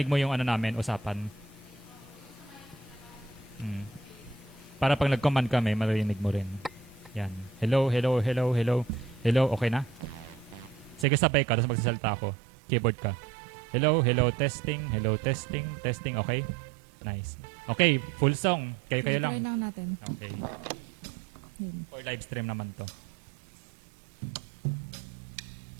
mo yung namin, usapan. Para pag nag-command kami, marinig mo rin. Yan. Hello, hello, hello, hello. Hello, okay na? Sige, sabay ka, tapos magsasalita ako. Keyboard ka. Hello, hello, testing, testing, okay? Nice. Okay, full song. Kayo lang. Try lang natin. Okay. For live stream naman to.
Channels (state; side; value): drops out; left; at 11.1 s